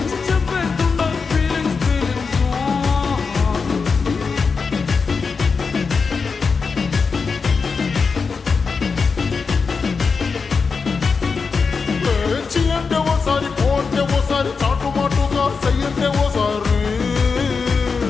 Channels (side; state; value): right; quieter; 5.0 dB